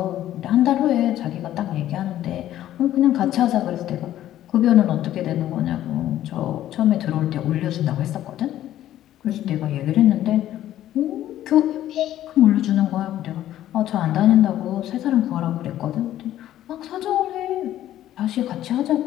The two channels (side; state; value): right; quieter; 12.8 dB